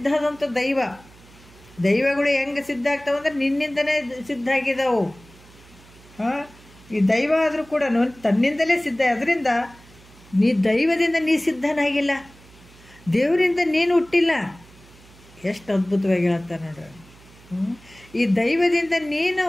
ಆದಂಥ ದೈವಗಳು ಹೆಂಗೆ ಸಿದ್ಧ ಆಗ್ತಾವಂದ್ರೆ ನಿನ್ನಿಂದನೇ ಸಿದ್ಧ ಆಗಿದ್ದಾವು. ಈ ದೈವ ಆದರೂ ಕೂಡ ತನ್ನಿಂದಲೇ ಸಿದ್ಧ. ಅದರಿಂದ ನೀ ದೈವದಿಂದ ನೀ ಸಿದ್ಧನಾಗಿಲ್ಲ, ದೇವರಿಂದ ನೀನು ಹುಟ್ಟಿಲ್ಲ. ಎಷ್ಟು ಅದ್ಭುತವಾಗಿ ಹೇಳ್ತಾರೆ ನೋಡ್ರಿ. ಈ ದೈವದಿಂದ ನೀನು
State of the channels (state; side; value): noise; right; hum, 24 dB below the sound